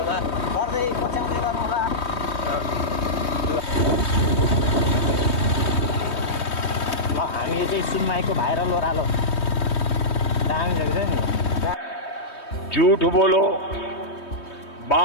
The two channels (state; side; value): late; right; 3.2 ms